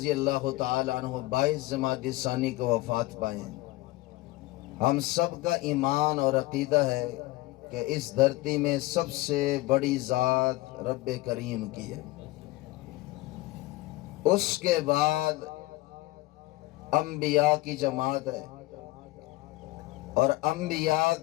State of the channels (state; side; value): quieter; right; 18.9 dB